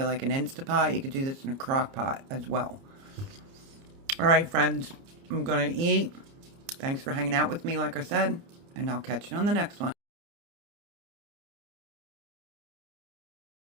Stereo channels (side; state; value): left; late; 30 ms